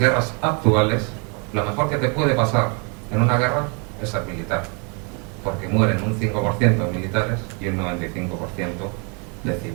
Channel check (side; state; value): left; quieter; 35.5 dB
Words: actuales, lo mejor que te puede pasar en una guerra es ser militar, porque mueren un 5% de militares y un 95% de